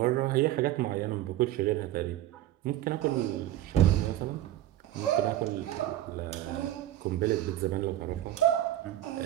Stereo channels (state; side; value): quieter; left; 13.4 dB